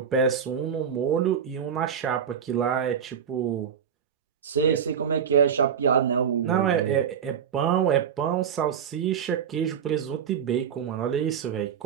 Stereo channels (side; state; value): left; quieter; 7.8 dB